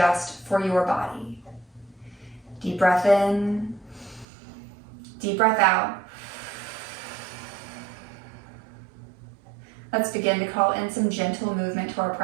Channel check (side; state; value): left; drops out; at 4.2 s